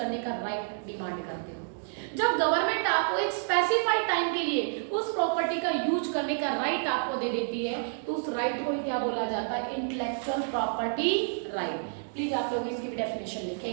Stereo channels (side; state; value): left; silent; digital silence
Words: का राइट डिमांड करते हो। जब गवर्नमेंट आपको एक स्पेसिफाइड टाइम के लिए उस प्रॉपर्टी का यूज करने का राइट आपको दे देती है, तो उस राइट को क्या बोला जाता है? Intellectual property right. प्लीज आप लोग इसकी भी डेफिनेशन लिखें।